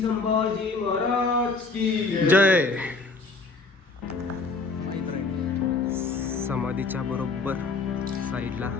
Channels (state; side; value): quieter; right; 3.9 dB